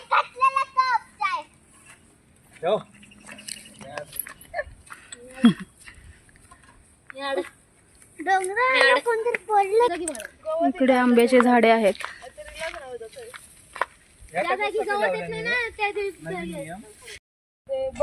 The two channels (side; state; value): both; identical; correlation 1.00